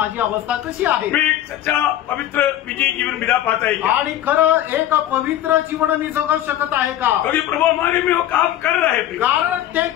अवस्था कशी आहे, मैं एक सच्चा पवित्र विजयी जीवन बिता पाता है क्या? आणि खरं एक पवित्र जीवन मी जगू शकत आहे का? क्योंकि प्रभु हमारे में वो काम कर रहा है। कारण ते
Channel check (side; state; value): right; quieter; 12.5 dB